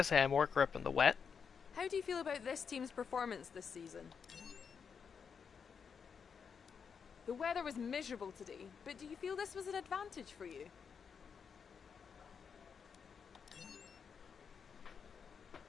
I had more grip in the wet. How do you feel about this team's performance this season? The weather was miserable today, but do you feel this was an advantage for you?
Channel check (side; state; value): right; quieter; 6.4 dB